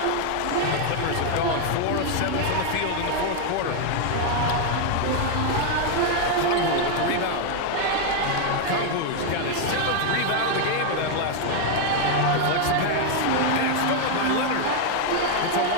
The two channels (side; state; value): both; different; correlation 0.01